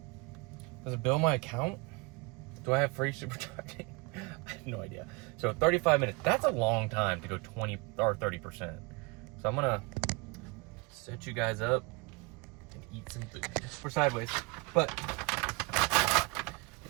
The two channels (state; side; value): quieter; left; 27.5 dB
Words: Does it bill my account? Do I have free supercharging? I have no idea. So 35 minutes, that's a long time to go 20 or 30%. So I'm gonna set you guys up and eat some food. We're sideways, but